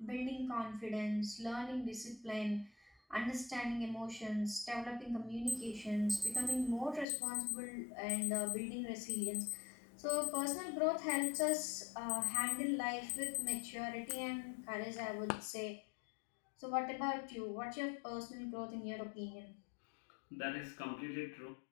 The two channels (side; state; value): right; drops out; at 7.1 s